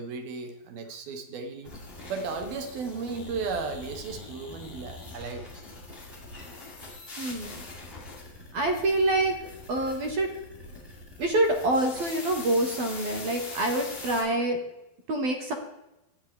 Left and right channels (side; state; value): left; late; 12 ms